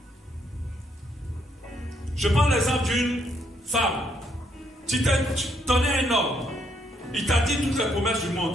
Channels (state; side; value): normal; both; correlation 0.72